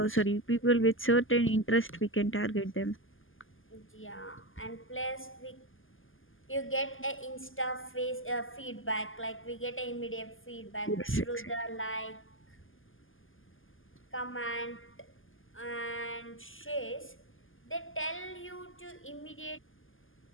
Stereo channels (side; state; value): right; late; 0.59 ms